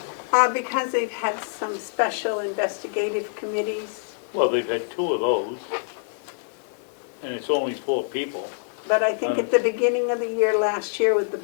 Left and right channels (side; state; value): right; silent; digital silence